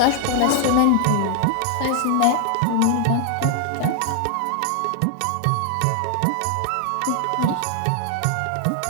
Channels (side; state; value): both; different; correlation 0.00